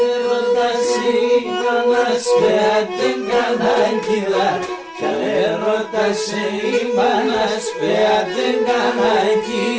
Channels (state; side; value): identical; both; correlation 1.00